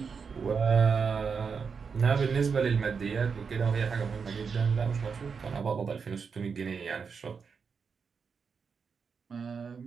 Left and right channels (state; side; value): quieter; left; 5.7 dB